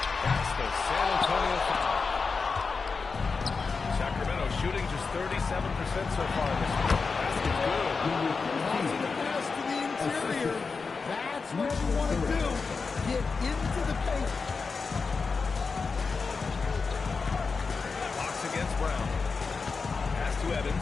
That's the San Antonio foul. Sacramento shooting just 37% so far in this game. Basket good. Tossing the pass to the interior. That's what you want to do. Get into the paint. Fox against Brown. Pass to Evans.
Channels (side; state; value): right; quieter; 4.7 dB